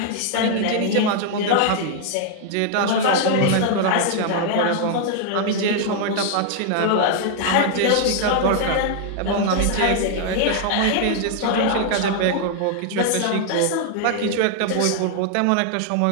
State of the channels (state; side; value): different; both; correlation 0.00